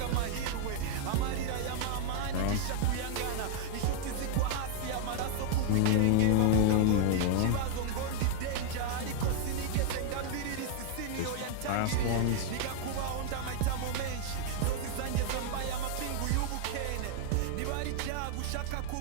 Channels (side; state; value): both; different; correlation 0.00